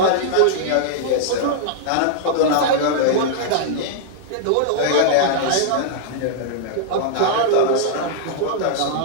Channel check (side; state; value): both; different; correlation -0.02